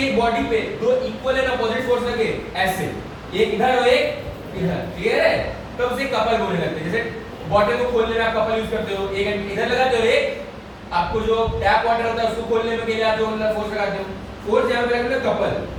एक बॉडी पे दो इक्वल एंड अपोजिट फोर्स लगे ऐसे, एक इधर और एक इधर, क्लियर है? तो उसे कपल बोलने लगते हैं। जैसे बॉटल को खोलने में आप कपल यूज करते हो, एक इधर लगाते हो, एक आपको जो टैप वाटर होता है उसको खोलने में के लिए आप जो फोर्स लगाते हो, फोर्स यहां पे लगता है couple.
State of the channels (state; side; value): identical; both; correlation 1.00